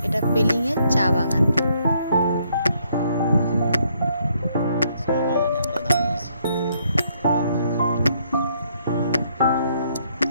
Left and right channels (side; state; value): both; inverted; correlation -0.71